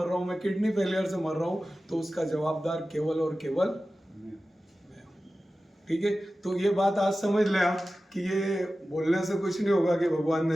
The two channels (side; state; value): both; normal; correlation 0.95